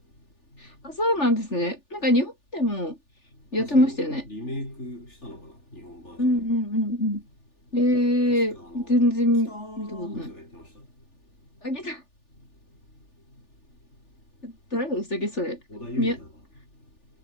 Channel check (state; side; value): late; right; 3.4 ms